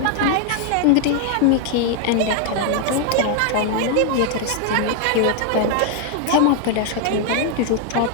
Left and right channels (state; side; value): different; both; correlation 0.00